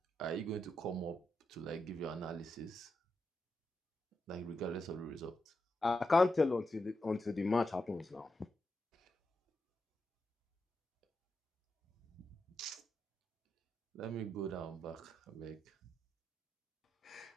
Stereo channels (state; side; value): normal; both; correlation 0.86